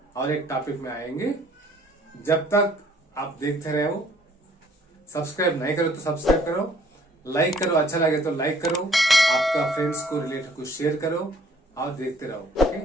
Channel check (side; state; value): both; normal; correlation 0.59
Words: और एक टॉपिक में आएंगे। जब तक आप देखते रहो, सब्सक्राइब नहीं करो तो सब्सक्राइब करो, लाइक करो, अच्छा लगे तो लाइक करो, आपका फ्रेंड्स को रिलेटिव को शेयर करो और देखते रहो। Okay,